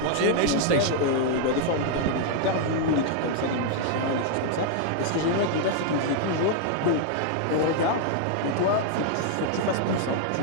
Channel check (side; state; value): both; different; correlation -0.01